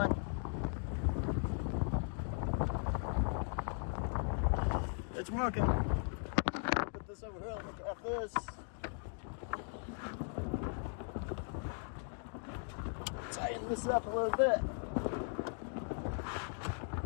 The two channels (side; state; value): right; silent; 52 dB below the other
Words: It's working. Put this over here, look at this. Tighten this up a little bit.